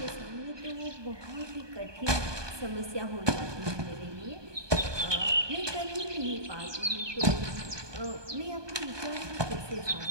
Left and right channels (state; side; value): late; left; 1.2 ms